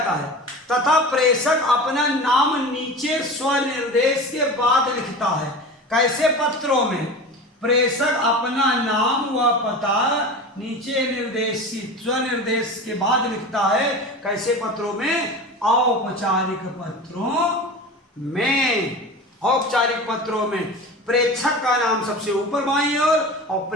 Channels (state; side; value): normal; both; correlation 0.32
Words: है, तथा प्रेषक अपना नाम नीचे स्वनिर्देश के बाद लिखता है। कैसे पत्रों में? प्रेषक अपना नाम व पता नीचे निर्देशित स्वनिर्देश के बाद लिखता है। कैसे पत्रों में? औपचारिक पत्रों में। औपचारिक पत्रों में प्रेषक का नाम सबसे ऊपर बाईं ओर और